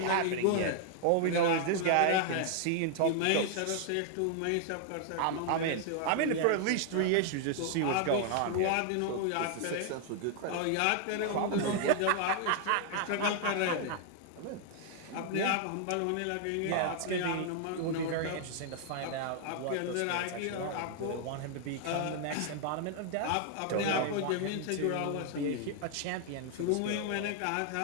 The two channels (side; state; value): both; different; correlation 0.00